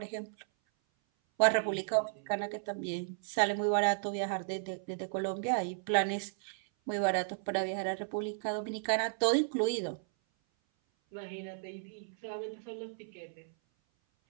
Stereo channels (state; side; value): silent; left; 55 dB below the other